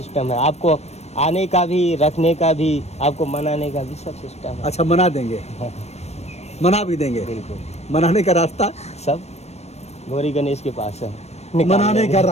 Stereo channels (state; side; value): late; right; 0.31 ms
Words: है, आपको आने का भी, रखने का भी, आपको मनाने का भी सब सिस्टम है। अच्छा, मना देंगे, मना भी देंगे। बिल्कुल, मनाने का रास्ता, सब गौरी गणेश के पास है। मनाने का